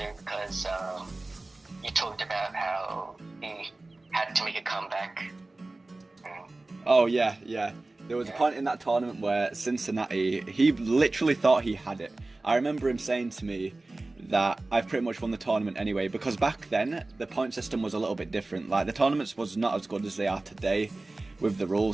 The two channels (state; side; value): quieter; left; 3.0 dB